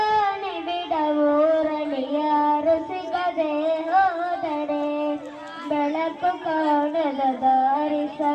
ನಿಬಿಡವೂರಲಿ ಯಾರು ಸಿಗದೆ ಹೋದರೆ ಬೆಳಕು ಕಾಣದ ದಾರಿ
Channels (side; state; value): both; identical; correlation 1.00